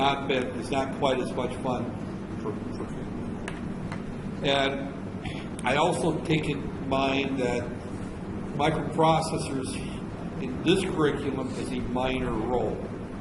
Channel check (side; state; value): both; identical; correlation 1.00